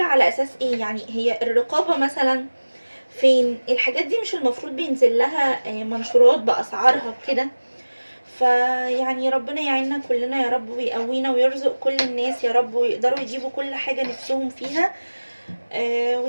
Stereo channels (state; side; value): inverted; both; correlation -1.00